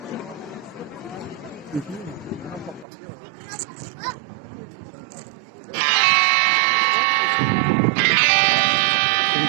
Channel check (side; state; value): left; drops out; at 2.9 s